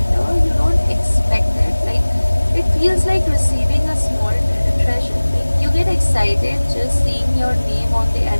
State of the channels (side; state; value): both; inverted; correlation -1.00